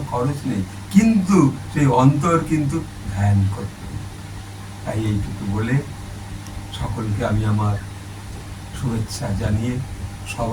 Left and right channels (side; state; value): both; identical; correlation 1.00